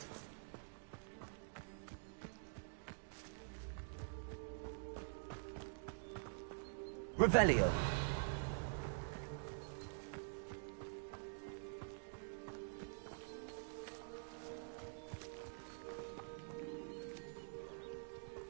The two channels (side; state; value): left; silent; digital silence